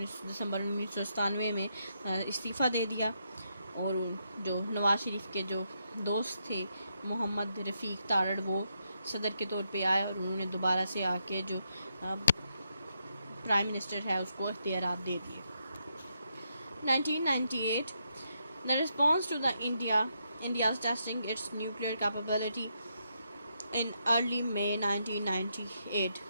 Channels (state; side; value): inverted; both; correlation -0.80